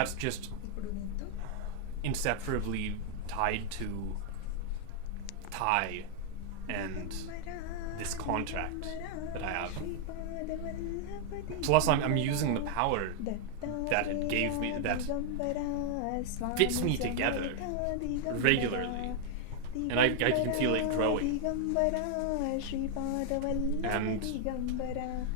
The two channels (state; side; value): different; both; correlation 0.00